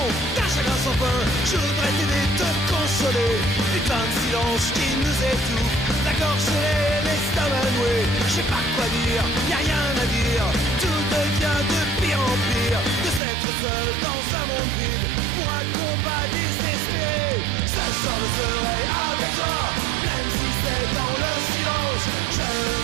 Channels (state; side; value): drops out; left; at 13.2 s